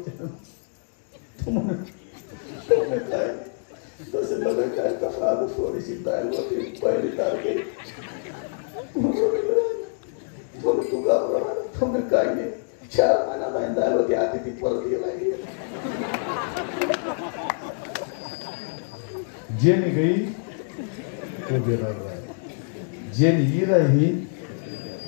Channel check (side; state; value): right; silent; 61 dB below the other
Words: तसे लगे काय कसा थोडीशी दाल होती पहिली तारखे तू घाबरला तुम्ही काय नाही 4 महिना नाही दाल होती आधी ती परत गेला जेनी गई तो बेरा रहा जेनी ही रही